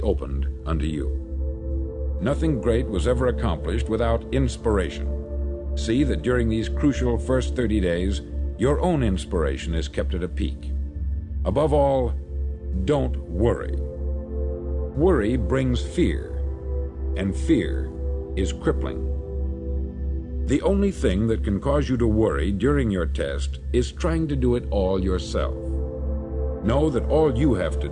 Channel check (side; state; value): both; identical; correlation 1.00